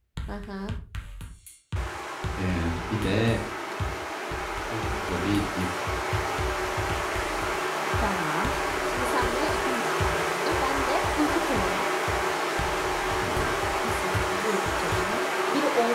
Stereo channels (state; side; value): identical; both; correlation 1.00